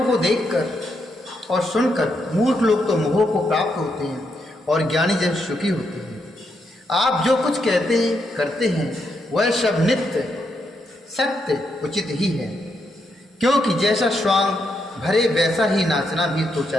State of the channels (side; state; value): both; normal; correlation 0.80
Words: को देखकर और सुनकर मूर्ख लोग तो मोह को प्राप्त होते हैं, और ज्ञानी जन सुखी होते हैं। आप जो कुछ कहते हैं करते हैं वह सब नित्य सत्य उचित ही है, क्योंकि जैसा स्वांग भरे वैसा ही नाचना भी तो